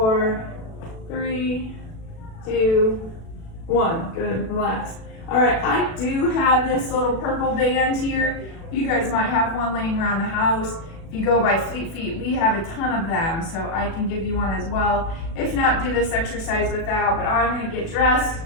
3, 2, 1. Good, relax. All right, I do have this little purple band here. You guys might have one laying around the house. If you go by Fleet Feet, we have a ton of them, so I can give you one as well. If not, do this exercise without, but I'm gonna get dressed.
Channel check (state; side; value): late; right; 36 ms